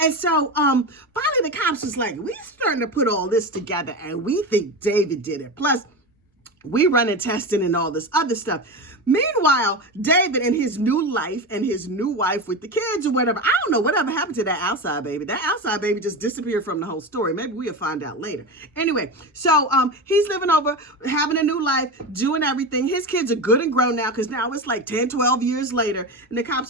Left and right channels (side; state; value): both; normal; correlation 0.22